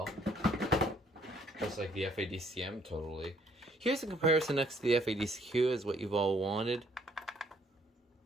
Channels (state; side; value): normal; both; correlation 0.65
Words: Just like the FADCM, totally. Here's a comparison next to the FADCQ as what you've all wanted.